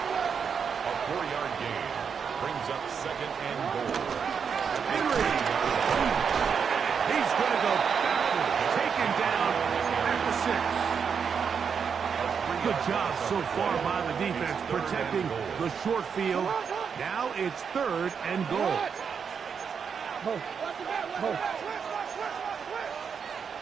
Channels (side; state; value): left; quieter; 6.6 dB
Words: A 4-yard gain brings up second and goal. Henry. He's going to go backward. Taken down at the 6. Good job so far by the defense protecting the short field. Now it's third and goal.